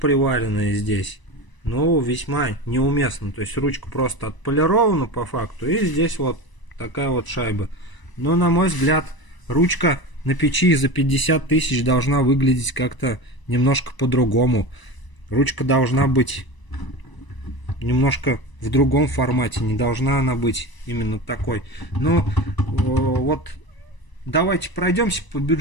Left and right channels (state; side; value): late; right; 1.0 ms